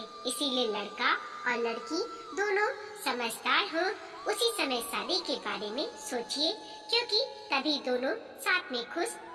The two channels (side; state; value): both; identical; correlation 1.00